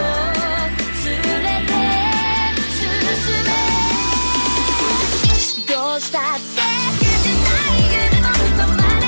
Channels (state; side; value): inverted; both; correlation -1.00